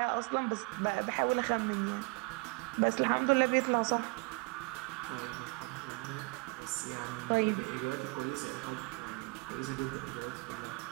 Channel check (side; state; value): left; quieter; 30.5 dB